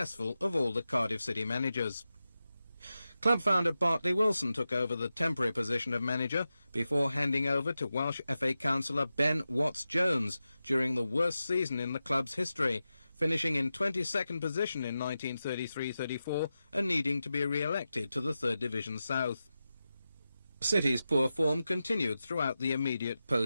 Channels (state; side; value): inverted; both; correlation -0.92